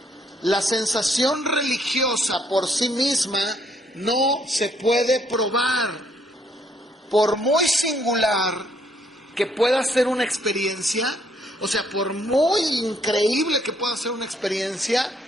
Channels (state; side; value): normal; both; correlation 0.68